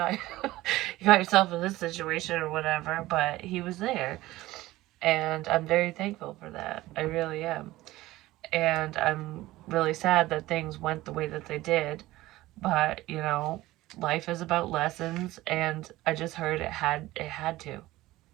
yourself in this situation or whatever, but he was there. And I'm very thankful for that. I really am. And I'm really sad that things went the way that they did. But, you know, life is about lessons, and I just heard it had to.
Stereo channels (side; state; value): left; quieter; 17.3 dB